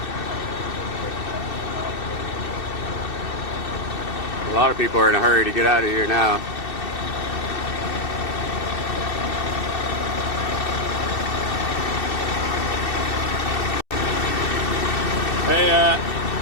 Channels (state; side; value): late; right; 2.6 ms